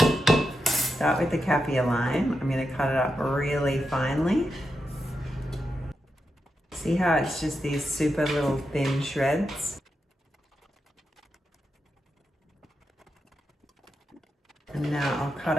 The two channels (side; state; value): both; normal; correlation 0.87